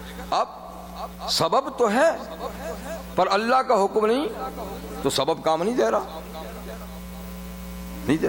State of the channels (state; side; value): identical; both; correlation 1.00